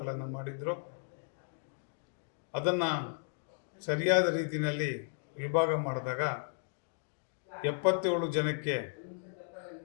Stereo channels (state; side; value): silent; right; digital silence